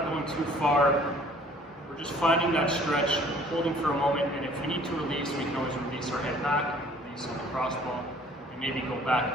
going too far. We're just finding that stretch, holding for a moment, and if we need to release, we can always release our head back, release the lacrosse ball, and maybe go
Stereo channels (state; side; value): normal; both; correlation 0.54